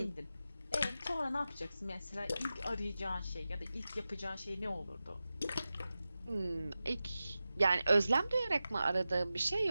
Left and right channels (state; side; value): inverted; both; correlation -0.94